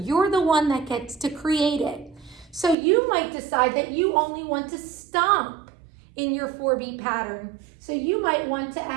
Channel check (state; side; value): drops out; left; at 2.8 s